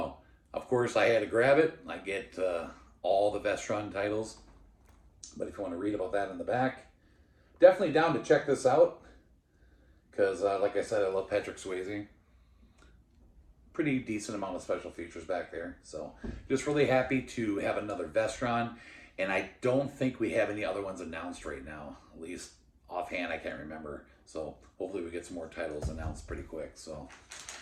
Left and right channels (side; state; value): both; identical; correlation 1.00